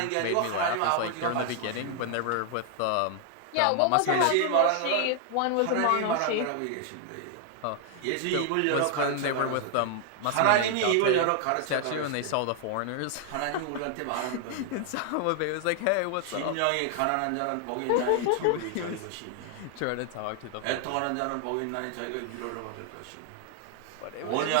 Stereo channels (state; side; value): different; both; correlation 0.00